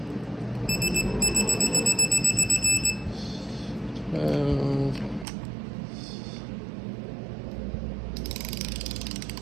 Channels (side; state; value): left; drops out; at 5.2 s